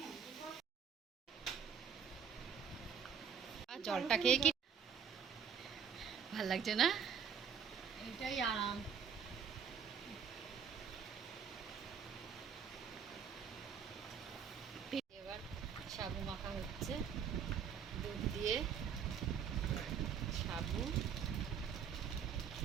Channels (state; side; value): quieter; left; 7.3 dB